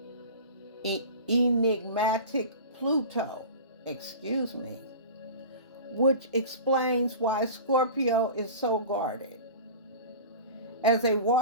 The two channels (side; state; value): both; inverted; correlation -0.35